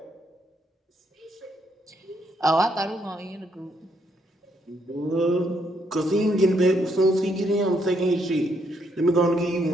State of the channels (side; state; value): both; normal; correlation 0.74